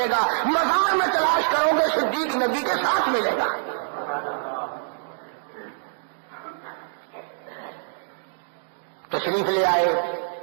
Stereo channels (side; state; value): left; silent; digital silence